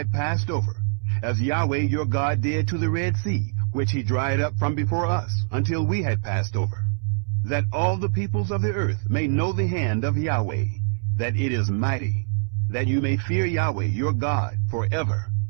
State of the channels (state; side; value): silent; left; 63 dB below the other